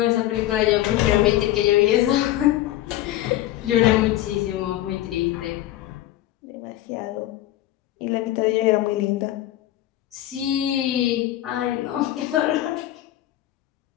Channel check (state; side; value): quieter; right; 14.4 dB